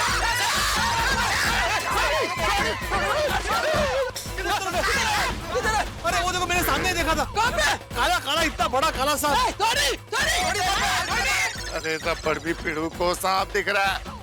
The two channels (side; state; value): both; identical; correlation 1.00